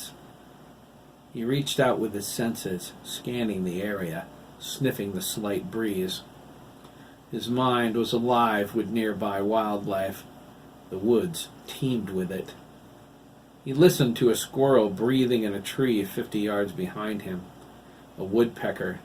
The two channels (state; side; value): identical; both; correlation 1.00